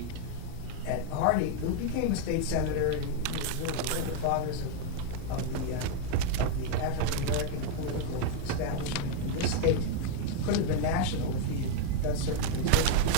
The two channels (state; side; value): different; both; correlation 0.01